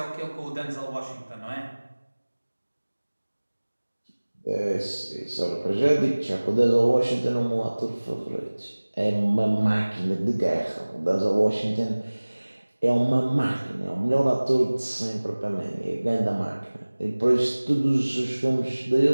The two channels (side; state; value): both; inverted; correlation -1.00